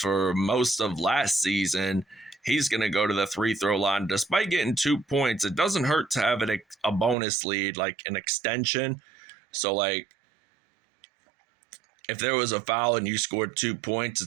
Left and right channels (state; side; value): drops out; left; at 7.2 s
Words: most of last season, he's going to go to the free-throw line. Despite getting 2 points, it doesn't hurt to have a bonus lead, like an extension. So, like, if there was a foul and you scored 2 points,